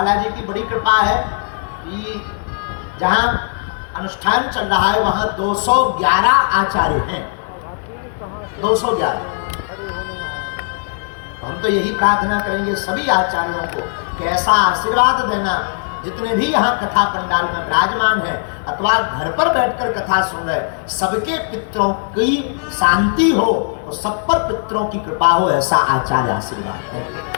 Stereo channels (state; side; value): silent; right; 65 dB below the other